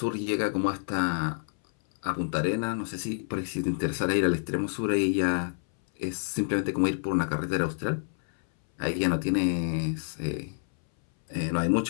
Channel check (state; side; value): silent; right; 59 dB below the other